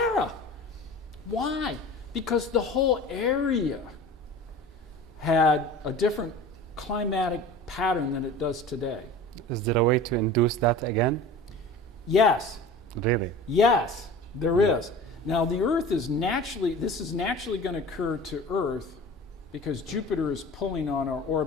Why? Because the whole area had a different climatic pattern than it does today. Is there a way to induce that again? Yes. Really? Yes, there is. Now the Earth is this is naturally going to occur to Earth because Jupiter is pulling on our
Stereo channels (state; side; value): normal; both; correlation 0.39